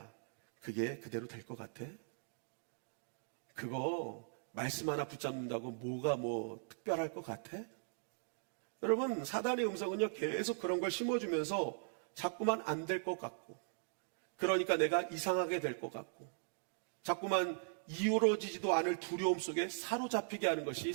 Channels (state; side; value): silent; left; digital silence